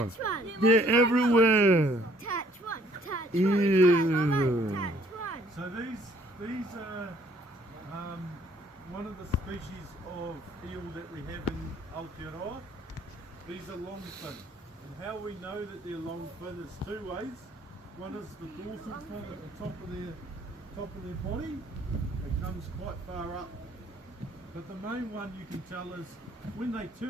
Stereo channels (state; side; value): normal; both; correlation 0.61